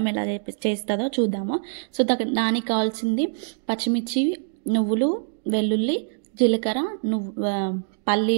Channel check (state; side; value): silent; left; digital silence